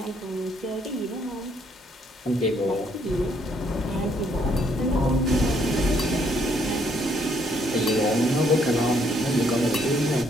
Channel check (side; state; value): both; normal; correlation 0.69